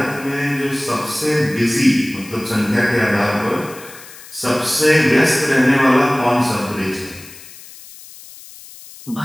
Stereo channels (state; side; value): noise; left; hiss, 18 dB below the sound